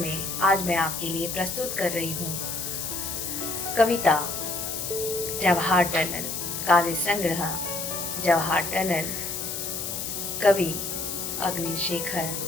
में आज मैं आपके लिए प्रस्तुत कर रही हूँ कविता जवाहर टनल। काव्य संग्रह जवाहर टनल। कवि अग्निशेखर।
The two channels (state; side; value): noise; left; hiss, 4 dB below the sound